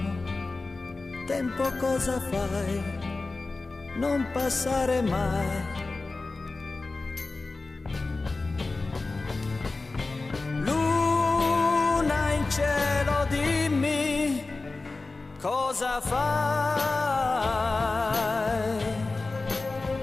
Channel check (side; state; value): right; quieter; 3.5 dB